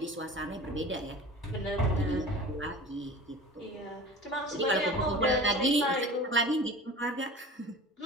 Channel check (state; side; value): normal; both; correlation 0.38